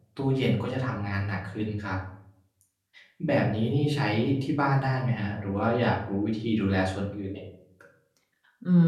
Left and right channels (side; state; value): both; identical; correlation 1.00